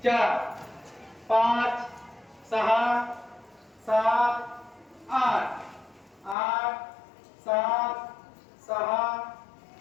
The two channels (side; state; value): right; drops out; at 6.4 s